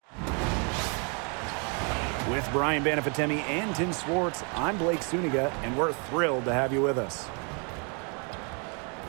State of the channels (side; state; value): left; quieter; 35.4 dB